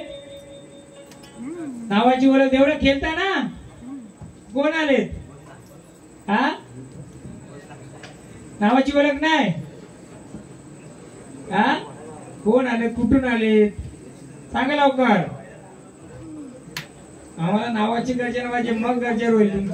नावाची ओळख एवढं खेळता ना. कोण आले? हा, नावाची ओळख नाही. हा, कोण आले? कुठून आले? सांगा लवकर. आम्हाला नावाची गर्जना पाहिजे, मग गरजेवर होईल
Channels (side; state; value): both; identical; correlation 1.00